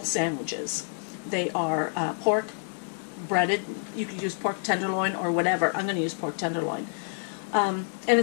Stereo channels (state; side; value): silent; right; digital silence